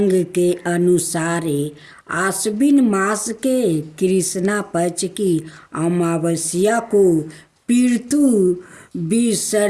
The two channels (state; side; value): identical; both; correlation 1.00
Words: के अनुसार आश्विन मास के कृष्णा पक्ष की अमावस्या को पितृ